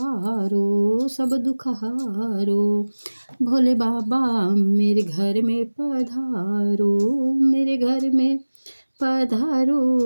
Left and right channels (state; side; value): inverted; both; correlation -1.00